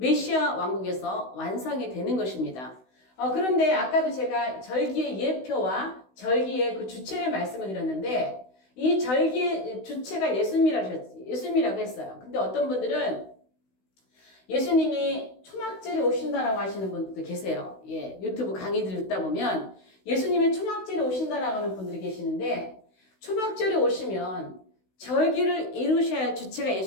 왕국에서 완성이 되는 것입니다. 그런데 아까도 제가 절기의 예표와 절기의 그 주체를 말씀을 드렸는데 이 절기의 주체가 예수님이라고 했어요. 근데 어떤 분들은 예수님이 초막절에 오신다라고 하시는 분들도 계세요. 예, 유튜브 강의들 듣다 보면 예수님이 초막절에 오신다라고 하는 분들이 계시는데 초막절에 오시면 절기를 이루셔야 할 주체가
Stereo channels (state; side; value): late; right; 16 ms